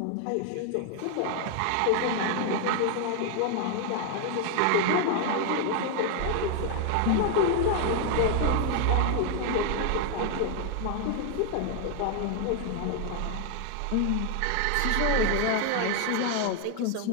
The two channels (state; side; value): different; both; correlation 0.00